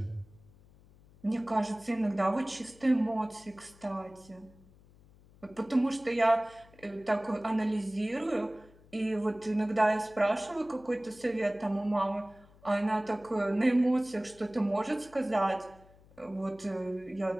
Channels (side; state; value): left; noise; hum, 26 dB below the sound